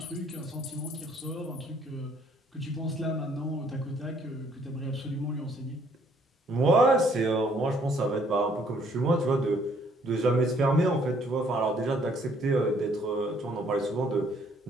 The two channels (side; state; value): both; normal; correlation 0.64